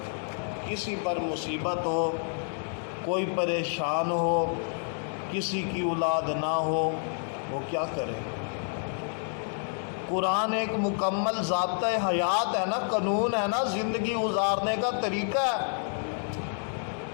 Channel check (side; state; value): right; silent; 58 dB below the other